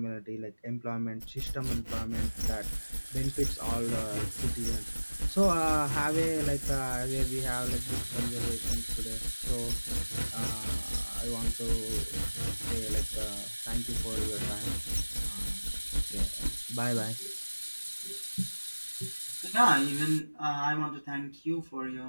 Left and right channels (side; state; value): both; inverted; correlation -1.00